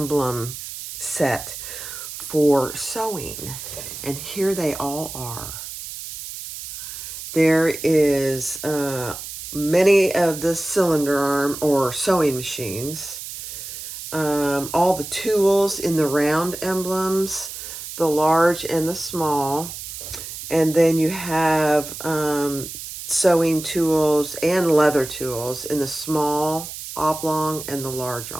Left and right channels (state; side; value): noise; right; hiss, 10 dB below the sound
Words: set for sewing, and here they all are. There is many of the cylinder arm or sewing machines, all the tools in the round emblems, the large and the small, and then you have sewing tools and leather tools in the small oblong and the large